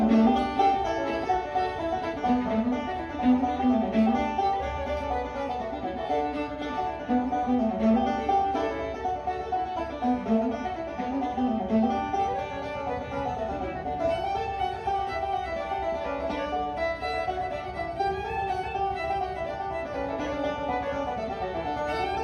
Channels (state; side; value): identical; both; correlation 1.00